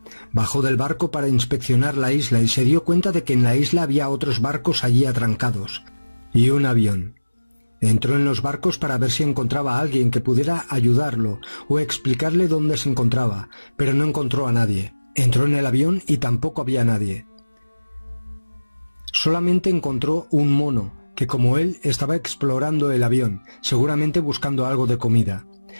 Bajó del barco para inspeccionar la isla y se dio cuenta de que en la isla había otros barcos allí atrancados y un avión. Entró en los barcos para ver si encontraba a alguien que pudiera ayudarlo o explicarle dónde se encontraba, pero no encontró a nadie. Entró en el avión y tampoco había nadie. Solamente encontró un mono, que como él estaba explorando el avión, seguramente buscando algo de comida.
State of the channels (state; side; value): inverted; both; correlation -1.00